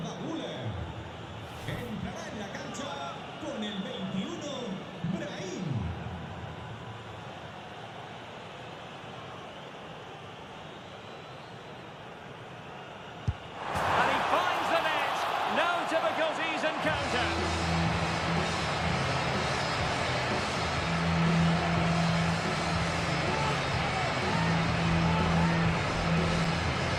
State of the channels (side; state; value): both; identical; correlation 1.00